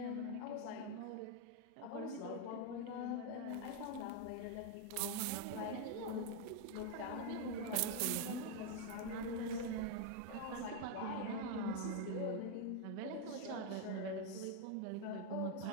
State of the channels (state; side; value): different; both; correlation 0.01